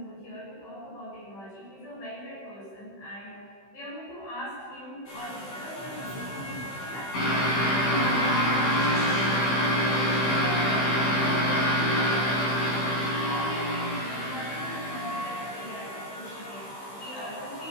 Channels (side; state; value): right; late; 15 ms